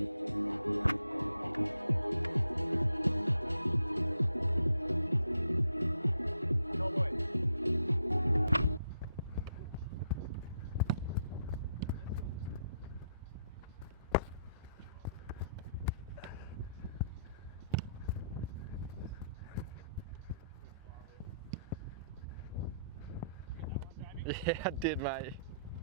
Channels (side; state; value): both; inverted; correlation -0.75